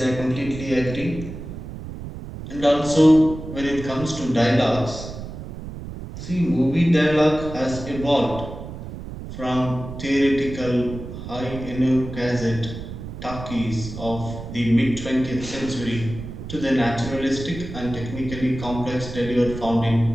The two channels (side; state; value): right; noise; rumble, 10 dB below the sound